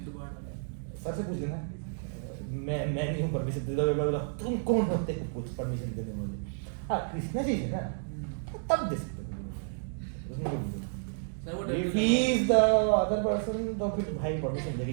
दोबारा डाला। सर से पूछ लेना, मैं नहीं हूँ परमिशन दे दो, बोला तुम कौन होते हो कुछ परमिशन देने वाले, हाँ कृष्णा जी है ना तब दे सकते हो, उसमें कोई नहीं। सर वो If he is the other person तो फिर भाई परमिशन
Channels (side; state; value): left; silent; digital silence